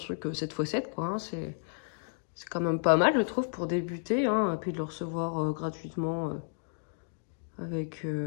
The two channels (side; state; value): right; silent; digital silence